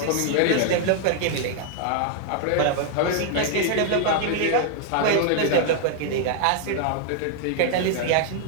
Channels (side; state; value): both; different; correlation 0.00